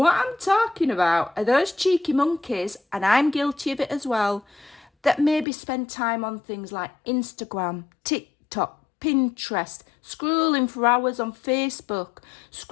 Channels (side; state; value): right; drops out; at 5.5 s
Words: I'm talking about are those cheeky monkeys, and I'm guilty of it as well, that maybe spend time on things like Instagram, TikTok, Pinterest, scrolling for hours on Facebook,